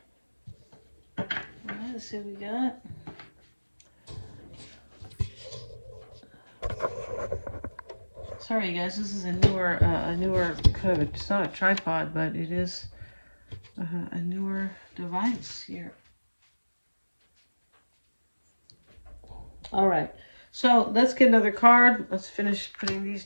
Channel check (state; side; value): inverted; both; correlation -1.00